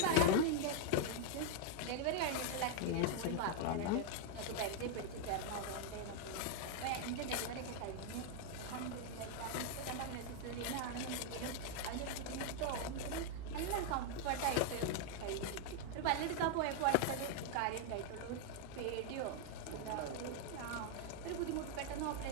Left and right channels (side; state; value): both; different; correlation 0.00